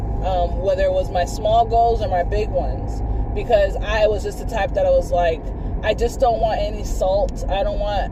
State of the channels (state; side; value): identical; both; correlation 1.00